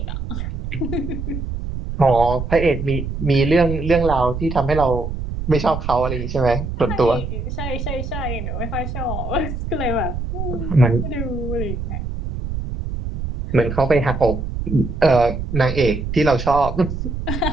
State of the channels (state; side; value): noise; right; rumble, 5 dB below the sound